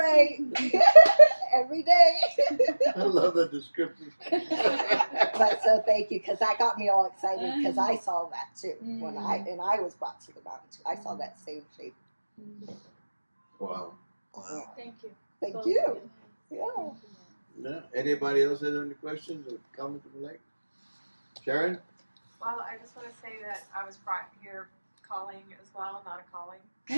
Every day. I love the description. But so thank you, because that got me all excited, because I saw that too when I was brought to the mountain too. I saw that same shape. Wow. Thank you. Thank Both you. of Yeah. Yeah. Anybody else have any questions or comments would like? Sharon? Well, I just want to say that I was brought here calling as well, not a calling.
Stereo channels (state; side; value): inverted; both; correlation -1.00